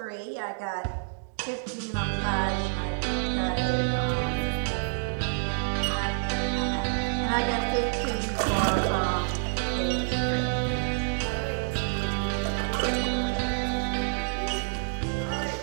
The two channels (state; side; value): silent; left; digital silence